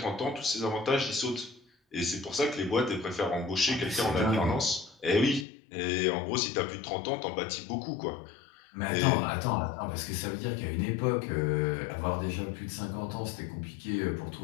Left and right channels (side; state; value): right; drops out; at 5.5 s